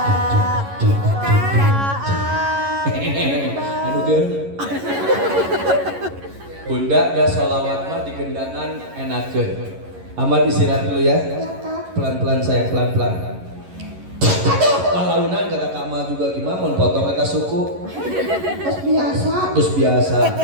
Aduh girl. Bunda dah sholawat mah di gendangan enakeun. Ahmad istirahat dulu ya. Pelan-pelan saya, pelan-pelan. Palaunan kata Kak Ma juga gimana mau potong kata suku. Terus biasa. Terus biasa.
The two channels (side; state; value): left; late; 11 ms